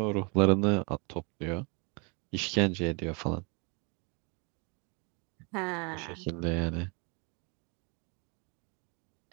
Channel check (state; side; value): quieter; left; 33.3 dB